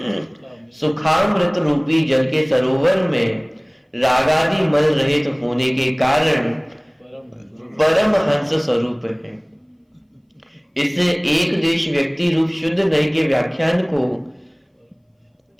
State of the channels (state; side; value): identical; both; correlation 1.00